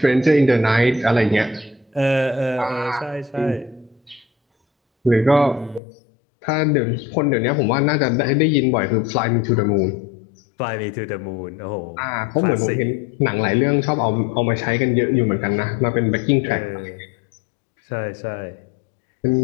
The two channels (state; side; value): drops out; right; at 5.8 s